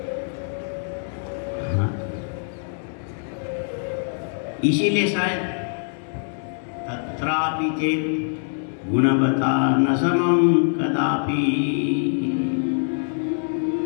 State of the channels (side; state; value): right; silent; digital silence